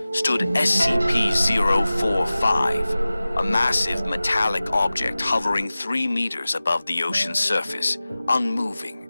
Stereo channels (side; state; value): both; inverted; correlation -0.97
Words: stood SCP-045, a massive metallic object hovering 3 meters above the ocean's surface, unmoving,